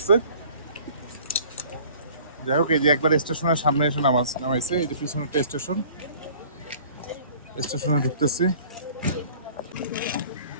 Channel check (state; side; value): inverted; both; correlation -0.50